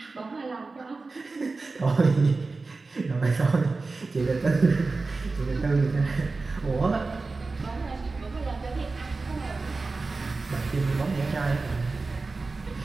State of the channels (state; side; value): quieter; left; 3.8 dB